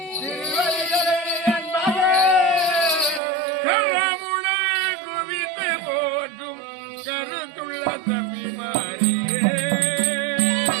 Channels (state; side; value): drops out; left; at 3.2 s